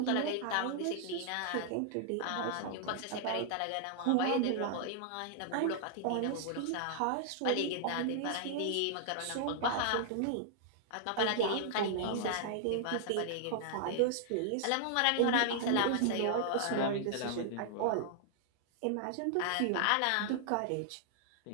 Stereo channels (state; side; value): different; both; correlation -0.01